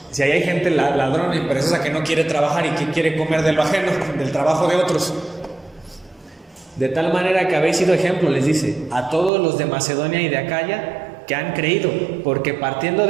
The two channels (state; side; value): drops out; left; at 9.3 s